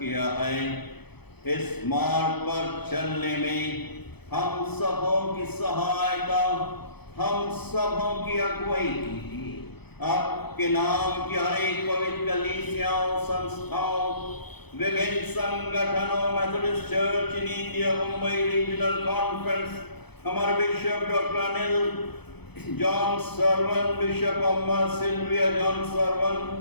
है। इस मार्ग पर चलने में हम सबों की सहायता, हम सबों की अगुवाई कीजिए। आपके नाम की हर एक पवित्र कलीसियाओं, संस्थाओं, विभिन्न संगठनों, Methodist church in India, Mumbai regional conference, हमारे bishop doctor Anil John Sarvan, bishop Amma Sylvia John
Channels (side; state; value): right; late; 0.98 ms